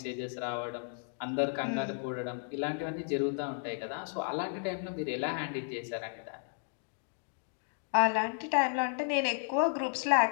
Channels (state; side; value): silent; right; 55 dB below the other